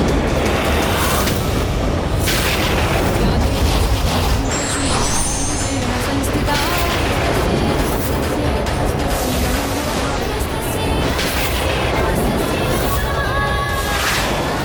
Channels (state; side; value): identical; both; correlation 1.00